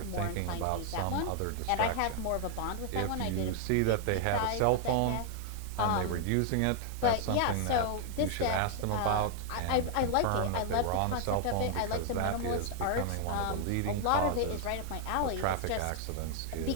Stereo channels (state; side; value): different; both; correlation 0.00